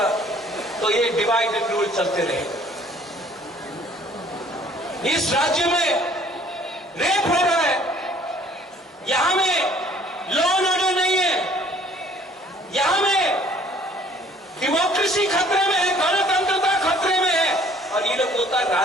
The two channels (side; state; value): both; normal; correlation 0.56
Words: तो ये डिवाइड एंड रूल चलते रहेगा। इस राज्य में रेप हो रहा है, यहां में लॉ एंड ऑर्डर नहीं है, यहां में डेमोक्रेसी खतरे में है, गणतंत्रता खतरे में है, और ये लोग बोलता है